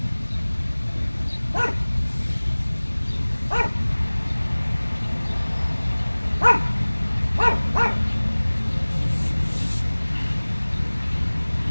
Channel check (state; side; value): inverted; both; correlation -1.00